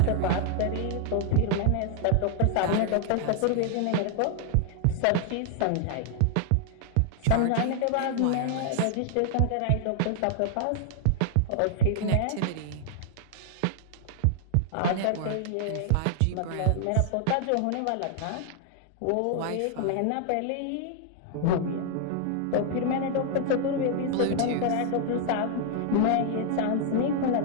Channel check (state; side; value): different; both; correlation 0.00